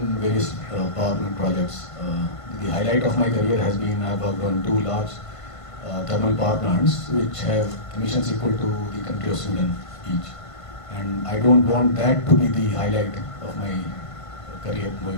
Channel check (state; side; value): late; right; 1.5 ms